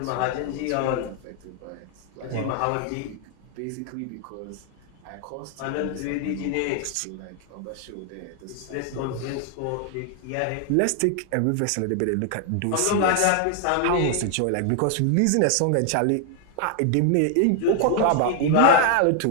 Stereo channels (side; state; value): both; different; correlation 0.00